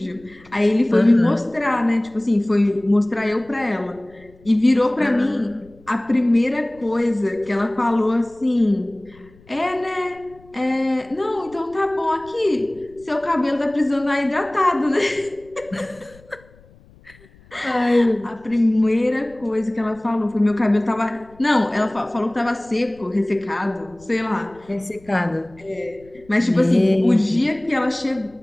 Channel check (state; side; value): noise; left; rumble, 27 dB below the sound